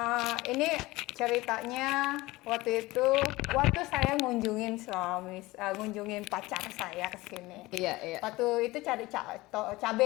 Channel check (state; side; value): quieter; right; 20.1 dB